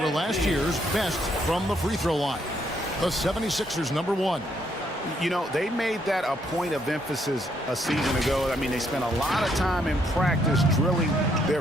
were last year's best from the free throw line. The 76ers, number one. You know, they made that a point of emphasis a season ago. I mean, they spent a lot of time in practice drilling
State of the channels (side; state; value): both; normal; correlation 0.72